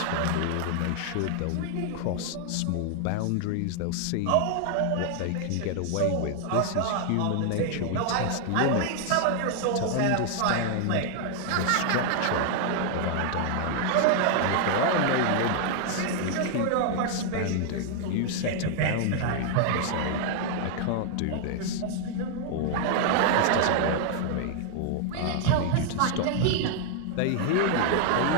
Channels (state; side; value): different; both; correlation 0.00